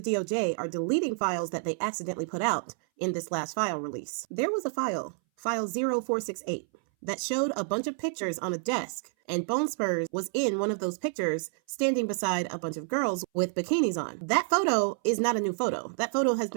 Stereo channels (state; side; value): silent; left; 58 dB below the other